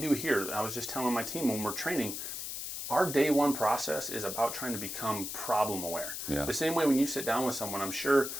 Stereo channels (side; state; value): left; noise; hiss, 6 dB below the sound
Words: here. I was just telling my team when we're training, our day one process is about trying to become problem aware. Yeah. The same way when you sit down with someone, I'm sure